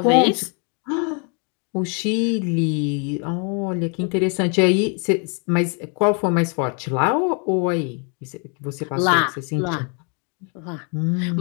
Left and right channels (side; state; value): right; quieter; 37.7 dB